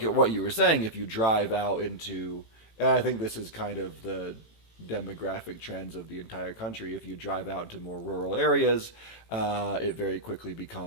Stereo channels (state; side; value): late; right; 18 ms